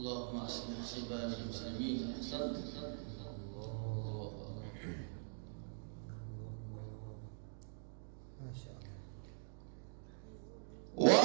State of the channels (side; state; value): left; silent; digital silence